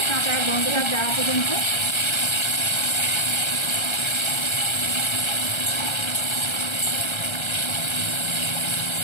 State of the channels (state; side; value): late; right; 1.3 ms